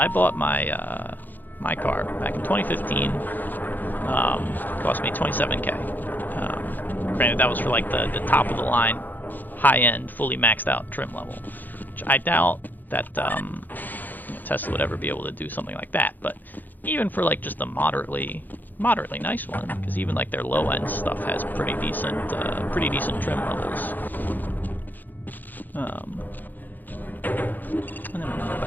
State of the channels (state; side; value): late; right; 0.086 ms